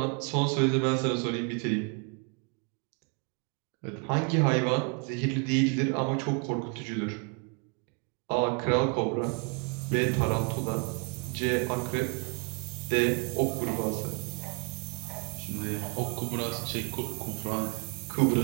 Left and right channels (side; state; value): left; quieter; 35.2 dB